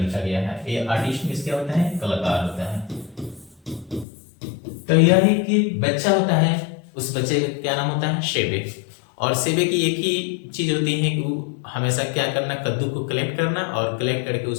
गया है। ये आर्टिस्ट मीन्स क्या होता है? कलाकार होता है। तो यह है कि बच्चा होता है, उस बच्चे का क्या नाम होता है? सेबे। और सेबे की एक ही चीज होती है कि वो हमेशा क्या करना? कद्दू को कलेक्ट करना और कलेक्ट करके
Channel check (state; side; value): drops out; right; at 4.0 s